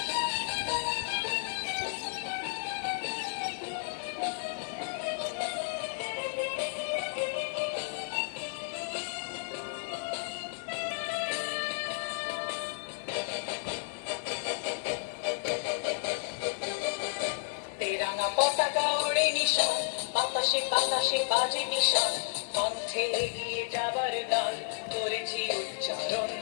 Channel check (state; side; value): silent; right; 56 dB below the other